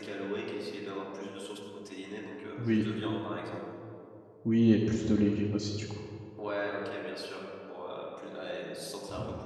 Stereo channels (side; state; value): both; identical; correlation 1.00